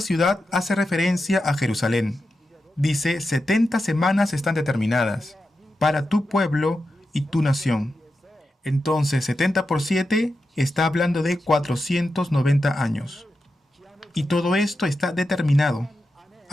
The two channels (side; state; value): both; normal; correlation 0.89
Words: hace referencia a Jerusalén. Dice 70 semanas están determinadas para tu pueblo y tu nación. Entonces 70 por 7 está hablando de 490 años. Y todo esto está determinado.